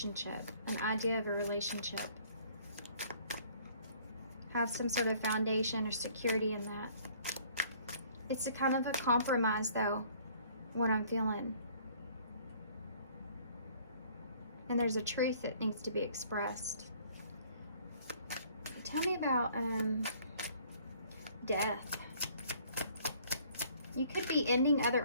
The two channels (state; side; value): inverted; both; correlation -0.57